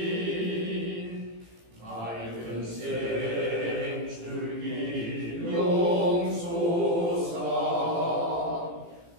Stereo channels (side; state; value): left; late; 18 ms